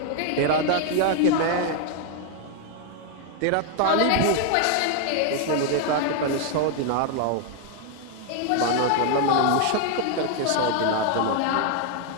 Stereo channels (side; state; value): both; different; correlation 0.00